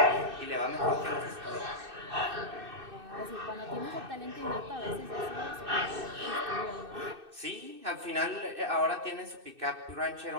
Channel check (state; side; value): late; left; 2.6 ms